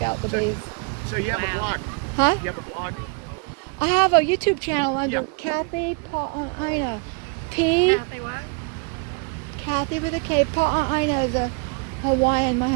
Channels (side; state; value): left; quieter; 34.4 dB